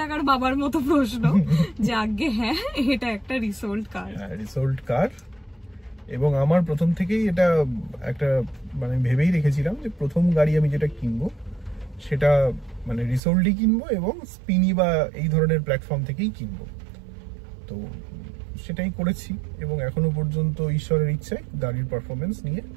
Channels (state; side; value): drops out; left; at 13.2 s